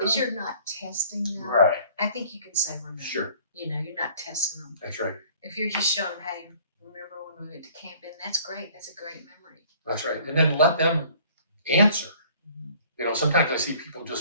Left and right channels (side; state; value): both; inverted; correlation -0.54